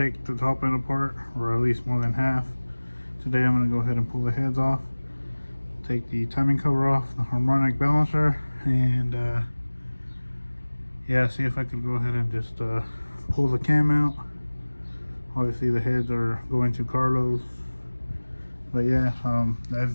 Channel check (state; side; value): inverted; both; correlation -1.00